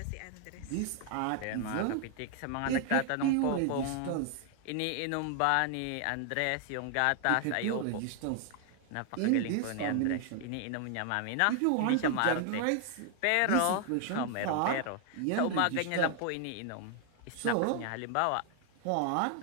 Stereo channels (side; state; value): both; different; correlation 0.00